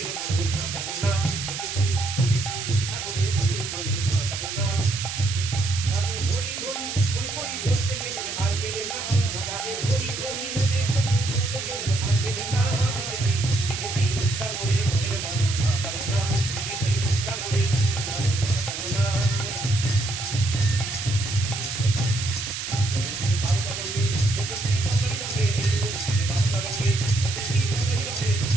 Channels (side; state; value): right; noise; hiss, 5 dB below the sound